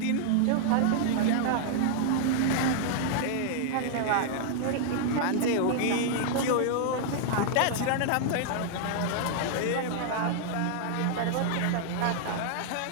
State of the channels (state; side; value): different; both; correlation -0.01